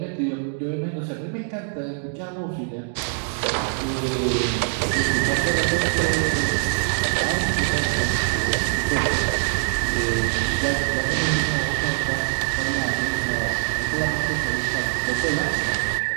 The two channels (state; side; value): silent; left; digital silence